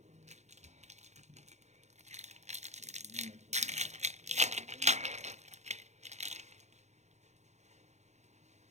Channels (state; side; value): late; left; 0.33 ms